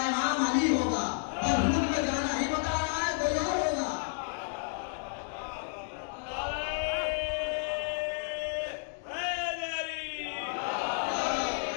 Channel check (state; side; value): silent; right; digital silence